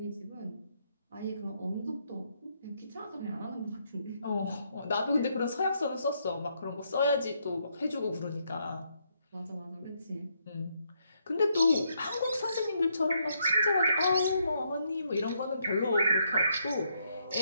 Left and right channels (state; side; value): inverted; both; correlation -0.76